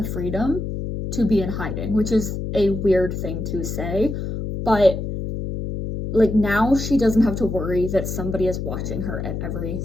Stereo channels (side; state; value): left; noise; hum, 4 dB below the sound